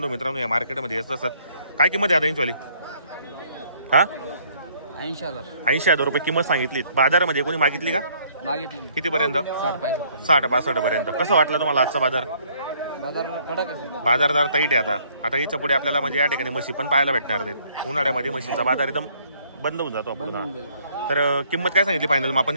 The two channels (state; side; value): inverted; both; correlation -0.63